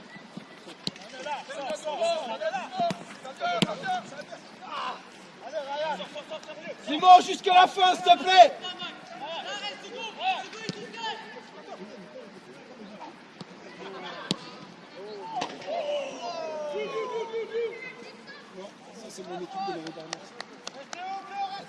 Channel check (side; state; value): both; identical; correlation 1.00